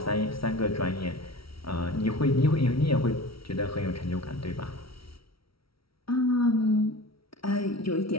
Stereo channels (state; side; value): late; right; 0.75 ms